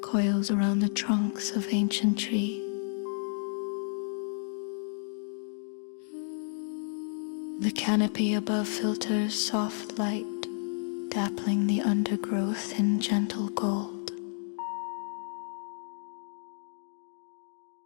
coils around the trunks of ancient trees. The canopy above filters soft light, dappling the undergrowth in gentle gold.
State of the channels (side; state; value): right; silent; 57 dB below the other